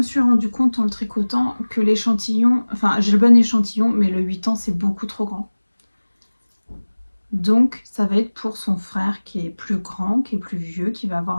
suis rendu compte en le tricotant que l'échantillon, enfin j'ai le bon échantillon, mais le 8 ans c'est beaucoup trop grand. Donc ça va être pour son frère qui est plus grand, qui est plus vieux, qui va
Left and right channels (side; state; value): both; inverted; correlation -1.00